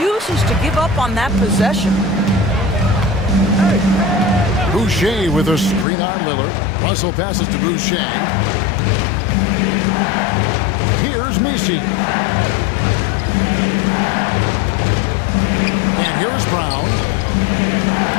to give up on that possession. Boucher with a screen on Lillard. Russell passes to Boucher. Here's Messi. And here is Brown.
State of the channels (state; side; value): drops out; right; at 5.9 s